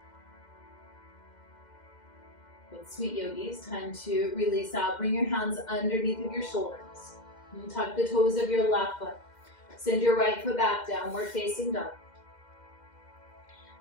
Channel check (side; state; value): right; late; 2.1 ms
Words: With Sweet Yogis, time to release out. Bring your hands underneath of your shoulders. And tuck the toes of your left foot. Send your right foot back, downward facing dog.